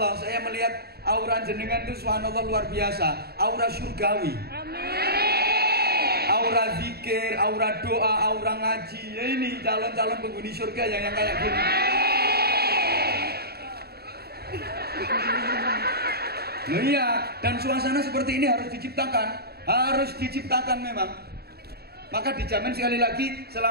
saya melihat aura jenengan itu subhanallah luar biasa, aura surgawi. Aura zikir, aura doa, aura ngaji. Ya ini calon-calon penghuni surga yang kayak gini. Nah iya, dan suasana seperti ini harus diciptakan memang. Maka dijamin sekali lagi,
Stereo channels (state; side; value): late; left; 0.46 ms